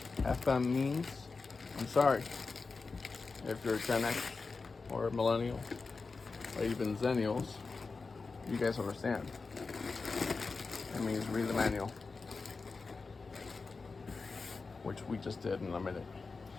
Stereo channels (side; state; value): right; quieter; 4.3 dB